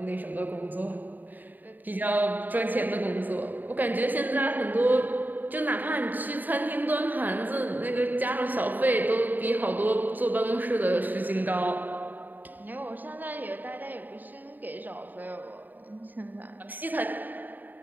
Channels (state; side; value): late; left; 0.087 ms